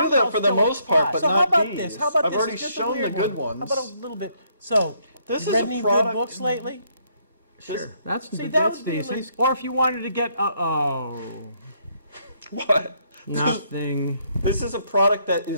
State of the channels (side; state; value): both; inverted; correlation -0.71